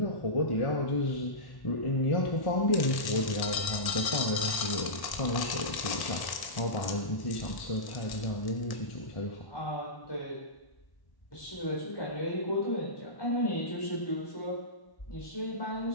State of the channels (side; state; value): right; late; 1.1 ms